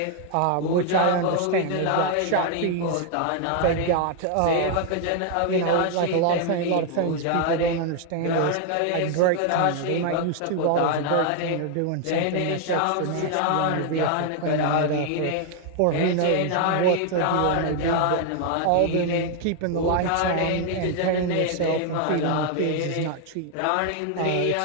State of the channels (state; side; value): different; both; correlation 0.00